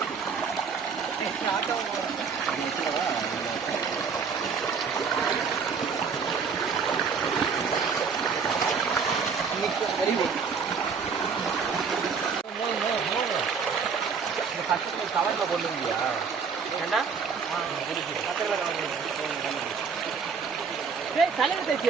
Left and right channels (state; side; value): quieter; left; 5.8 dB